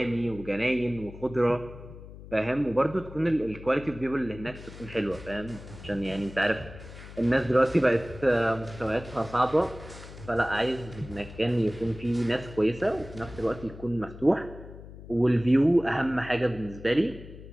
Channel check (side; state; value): left; noise; hum, 15 dB below the sound